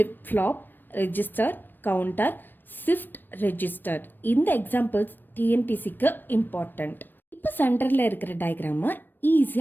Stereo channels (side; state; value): right; late; 0.093 ms